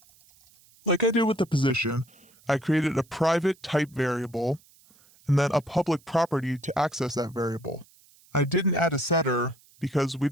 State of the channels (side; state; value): right; noise; hiss, 29 dB below the sound